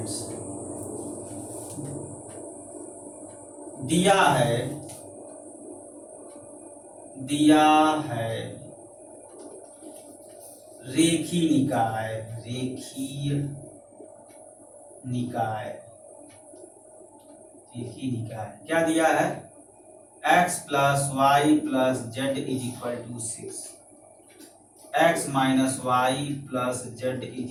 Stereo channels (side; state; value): both; identical; correlation 1.00